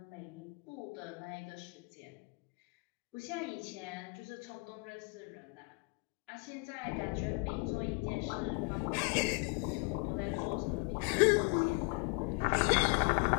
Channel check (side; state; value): right; quieter; 32.1 dB